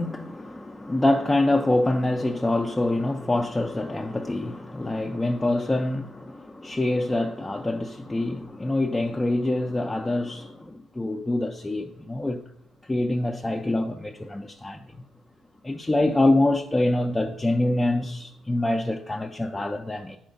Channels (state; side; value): normal; both; correlation 0.96